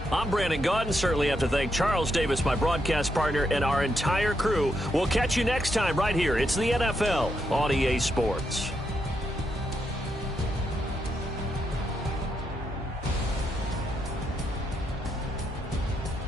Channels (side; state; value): both; normal; correlation 0.80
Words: I'm Brandon Gaudin. Certainly have to thank Charles Davis, my broadcast partner, and our entire crew. We'll catch you next time right here. It's the NFL on EA Sports.